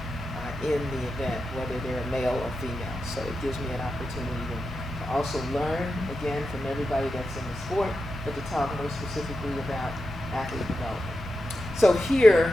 in the event, whether they're male or female. So it gives me an opportunity to also learn, again, from everybody that's in the sport, but to talk more specifically about athlete development. So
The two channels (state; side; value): normal; both; correlation 0.90